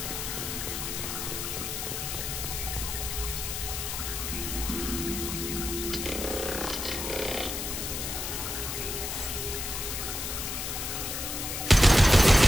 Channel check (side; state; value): left; noise; hiss, 4 dB below the sound